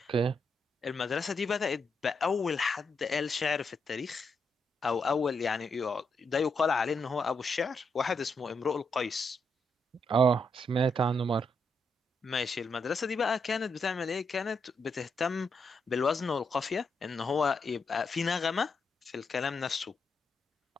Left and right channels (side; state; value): both; normal; correlation 0.80